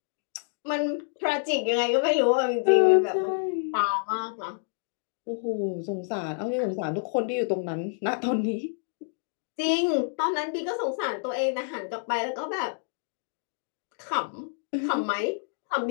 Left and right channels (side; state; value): right; silent; digital silence